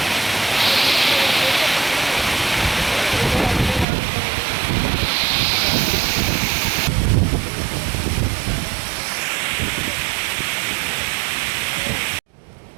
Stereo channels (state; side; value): drops out; left; at 3.9 s